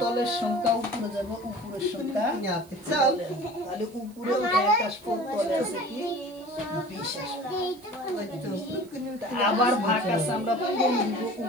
তলের সংখ্যা উপরে যাবে, উপরের সংখ্যা তলে আসবে। তাহলে উপরে 1 আসবে, তলে আছে কি 20 আসবে। আবার ভাগ আছে আমরা পূরণ দিব,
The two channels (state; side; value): noise; right; hiss, 26 dB below the sound